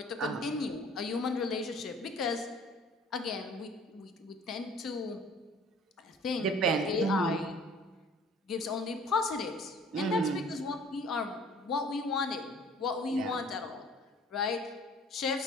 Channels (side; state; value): both; normal; correlation 0.51